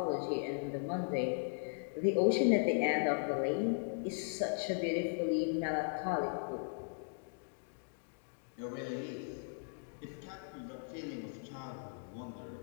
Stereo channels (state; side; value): silent; right; digital silence